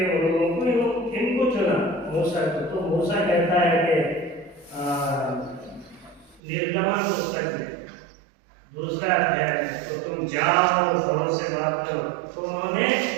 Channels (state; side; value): drops out; left; at 6.4 s